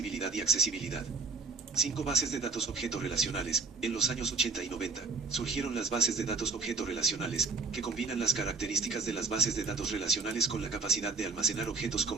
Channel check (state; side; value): quieter; left; 4.3 dB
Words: y accesibilidad. 5 bases de datos objeto relacionales. En los años 80 y 90, surgieron las bases de datos objeto relacionales, que combinan las características de las bases de datos relacionales con la capacidad de almacenar objetos